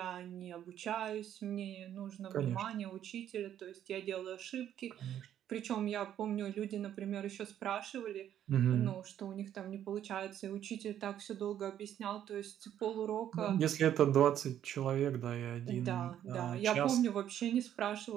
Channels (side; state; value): left; quieter; 10.6 dB